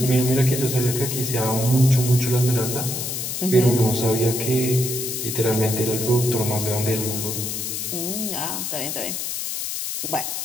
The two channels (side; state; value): left; noise; hiss, 3 dB below the sound